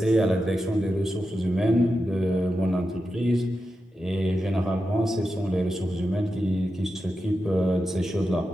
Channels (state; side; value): normal; both; correlation 0.89